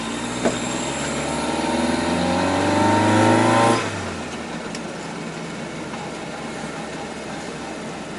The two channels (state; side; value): identical; both; correlation 1.00